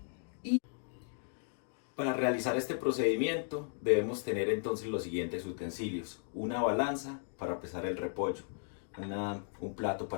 Para realizar este procedimiento debemos tener entonces los siguientes utensilios: una balanza para pesar el repollo, un plato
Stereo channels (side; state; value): right; silent; digital silence